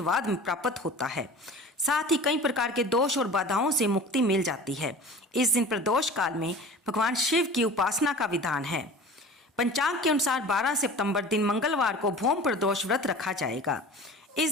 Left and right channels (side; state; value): both; normal; correlation 0.39